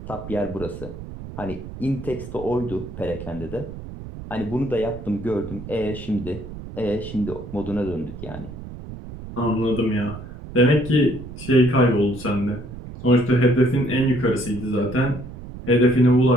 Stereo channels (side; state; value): right; noise; rumble, 12 dB below the sound